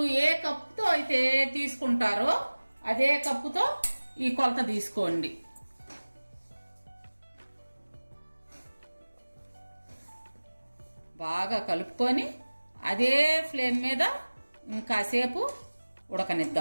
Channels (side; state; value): both; inverted; correlation -1.00